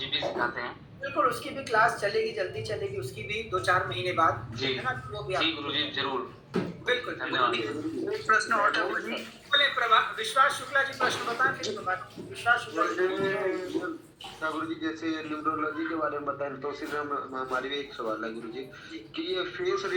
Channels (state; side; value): identical; both; correlation 1.00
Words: भी सिखाते हैं? बिल्कुल, उसकी भी क्लास चलेगी, जल्दी चलेगी, उसकी भी 2-4 महीने बाद, जी है ना? वो भी जी गुरु जी जरूर। बिल्कुल धन्यवाद। एक प्रश्न और था गुरु जी। बोले विश्वास शुक्ला जी प्रश्न बताएं, फिर विश्वास शुक्ला जी। गुरु जी जैसे न्यूमरोलॉजी के बारे में बताएं, तो सीधे हमारी भी एक सवाल है गुरु जी कि ये फेस